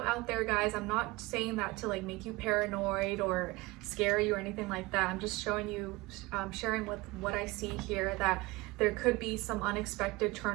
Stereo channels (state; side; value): quieter; left; 22.1 dB